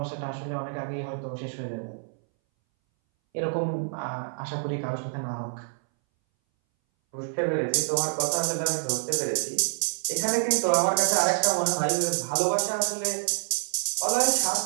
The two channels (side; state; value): left; silent; 60 dB below the other